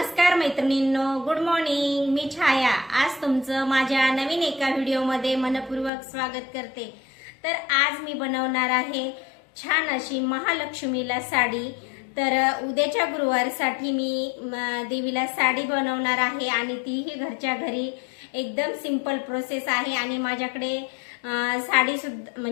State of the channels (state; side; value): drops out; right; at 5.9 s